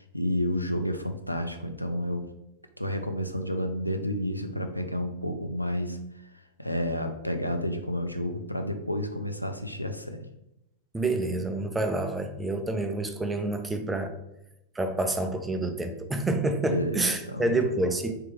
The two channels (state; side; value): normal; both; correlation -0.04